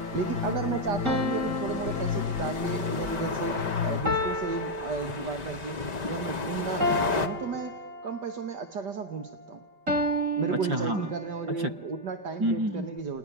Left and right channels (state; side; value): late; left; 5.1 ms